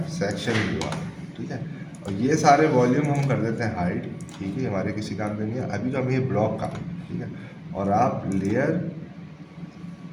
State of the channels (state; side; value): identical; both; correlation 1.00